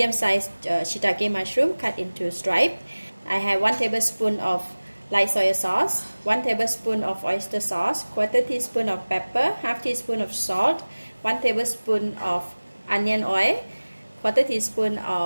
shiitake mushroom cut into stripe. I have 1 tablespoon of light soy sauce, 1 tablespoon of oyster sauce, 1/4 teaspoon of pepper, 1/2 teaspoon of salt, 1 tablespoon of onion oil, 1/4 teaspoon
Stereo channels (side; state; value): both; inverted; correlation -1.00